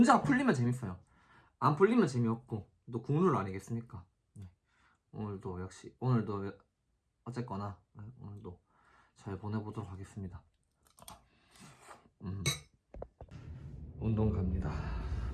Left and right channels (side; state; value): both; identical; correlation 1.00